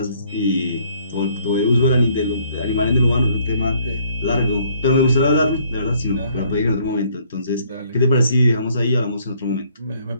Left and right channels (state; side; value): inverted; both; correlation -0.64